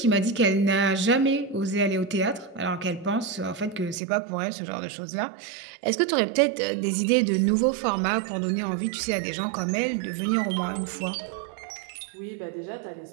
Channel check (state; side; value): drops out; left; at 4.0 s